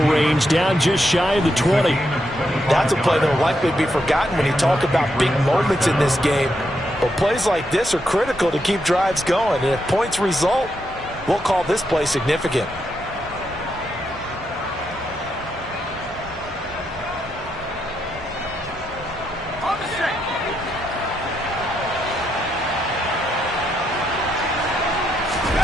range, down just shy of the 20. That's a play that will likely be forgotten when you talk about big moments in this game. But plays like this are critical to keep drives going. And if points result, we'll call this play significant.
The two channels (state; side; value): normal; both; correlation 0.81